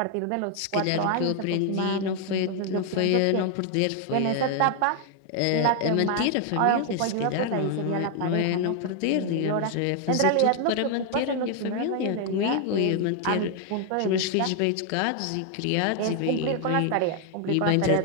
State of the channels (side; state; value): both; different; correlation 0.00